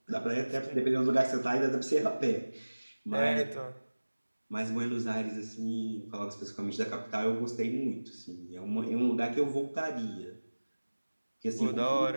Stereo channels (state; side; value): inverted; both; correlation -1.00